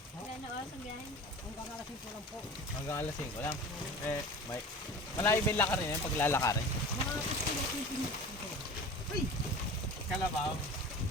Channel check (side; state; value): both; normal; correlation 0.37